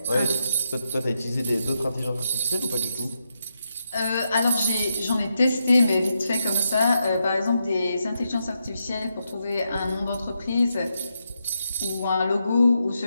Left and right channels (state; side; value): inverted; both; correlation -0.83